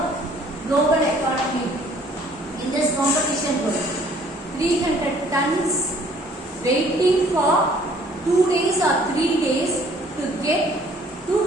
global economy, in this competition world? 300 tons waiting for 2 days or 3 days to get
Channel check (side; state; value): both; normal; correlation 0.58